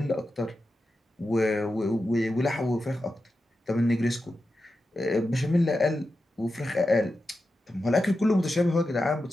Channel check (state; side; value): normal; both; correlation 0.90